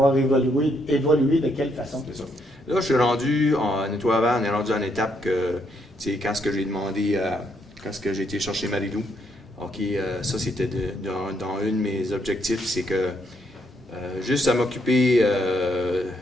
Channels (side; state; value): both; normal; correlation 0.74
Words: évolué de quelle façon? C'est ça. Là, je suis rendu en nettoyeur, on est rendu en étape que, tu sais, quand ce que j'ai demandé quand j'ai été chercher Marie-Lou, OK, ça c'était dans un de mes objectifs, c'est que juste à m'occuper de